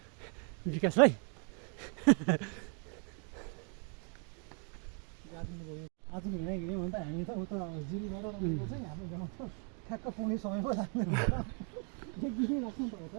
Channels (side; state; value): left; quieter; 39.5 dB